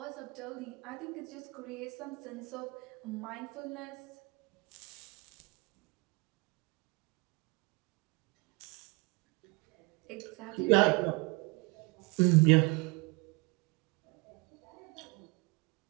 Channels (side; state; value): left; quieter; 28.5 dB